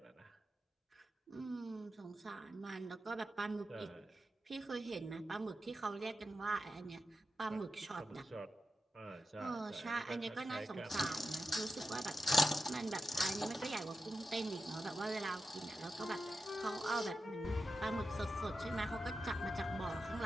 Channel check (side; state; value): both; normal; correlation 0.89